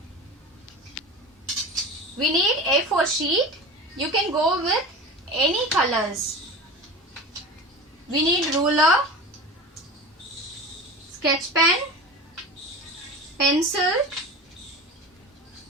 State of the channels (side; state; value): both; normal; correlation 0.32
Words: We need A4 sheet. You can go with any colors. We need ruler, sketch pen, pencil,